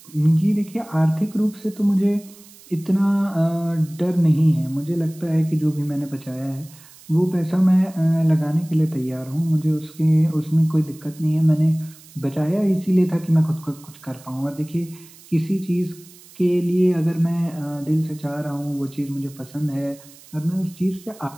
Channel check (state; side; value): noise; right; hiss, 22 dB below the sound